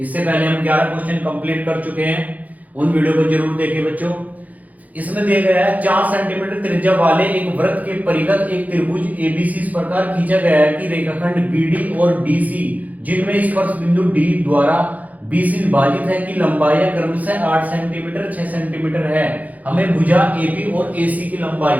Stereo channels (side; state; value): left; late; 0.077 ms